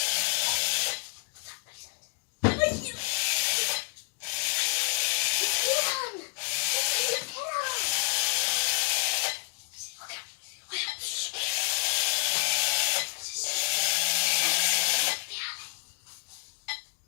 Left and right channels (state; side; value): silent; right; 58 dB below the other